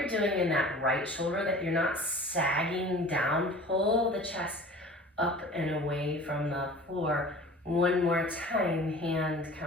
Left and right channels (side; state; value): both; normal; correlation 0.42